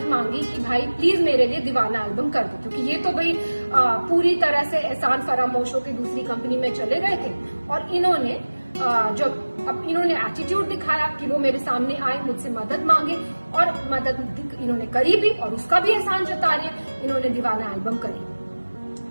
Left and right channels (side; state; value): both; inverted; correlation -1.00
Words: मांगी कि भाई प्लीज मेरे लिए दीवाना एल्बम कर दो, क्योंकि ये तो भाई पूरी तरह से एहसान फरामोश होकर दूसरी कंपनी में चले गए थे। और इन्होंने जब अब इन्होंने एटीट्यूड दिखाया कि वो मेरे सामने आए, मुझसे मदद मांगे, और मदद इन्होंने करी भी और उसका भी एहसान जता रहे हैं, इन्होंने दीवाना एल्बम करी।